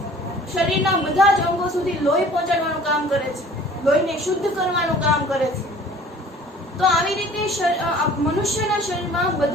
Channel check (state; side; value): normal; both; correlation 0.49